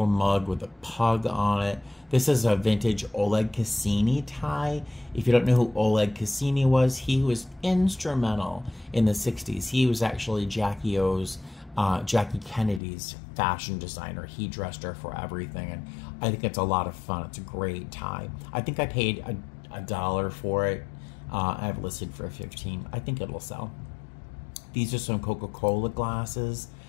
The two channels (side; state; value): right; drops out; at 12.8 s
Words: mug with a pug on it. This is a vintage Oleg Cassini tie. If you don't know who Oleg Cassini was, he was instrumental in the 60s. He was actually Jackie Kennedy's fashion designer. He dressed her for everything, and I think it's a lot of fun. It's a great tie. I think I paid $1 for it. I have it listed for $15. I think it'll sell. These are some Coca-Cola glasses